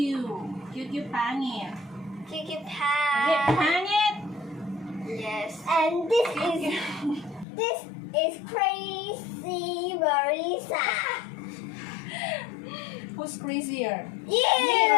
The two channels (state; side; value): drops out; right; at 7.5 s